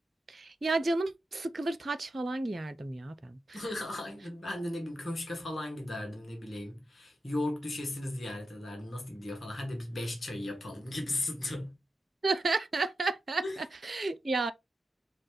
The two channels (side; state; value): both; normal; correlation 0.90